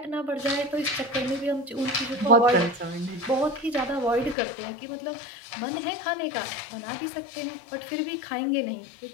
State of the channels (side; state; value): right; drops out; at 4.4 s